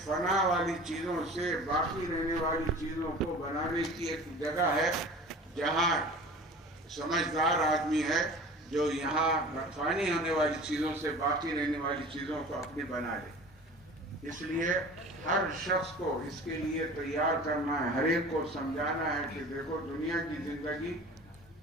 فنا والی چیزوں سے باقی رہنے والی چیزوں کو بنانے کی ایک جگہ ہے جہاں سمجھدار آدمی ہے جو یہاں فانی ہونے والی چیزوں سے باقی رہنے والی چیزوں کو اپنی بنا لے. اس لیے ہر شخص کو اس کے لیے تیار کرنا ہے، ہر ایک کو سمجھانا ہے کہ دیکھو دنیا کی زندگی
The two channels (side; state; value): both; normal; correlation 0.41